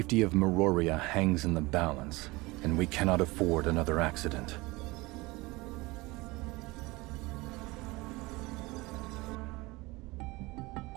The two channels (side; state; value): left; quieter; 22.7 dB